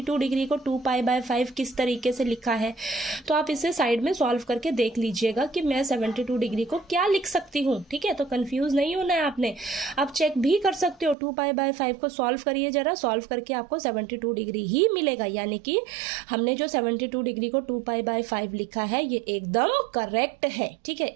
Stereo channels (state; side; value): drops out; left; at 11.2 s